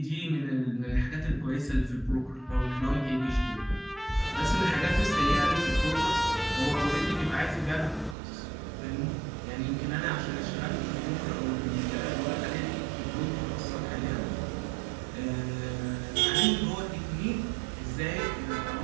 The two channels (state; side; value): drops out; left; at 8.2 s